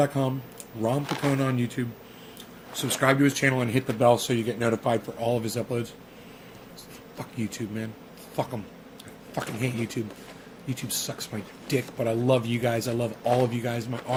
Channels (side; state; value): both; identical; correlation 1.00